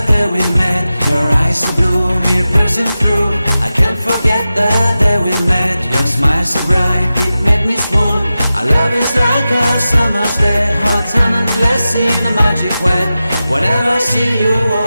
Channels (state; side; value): inverted; both; correlation -0.94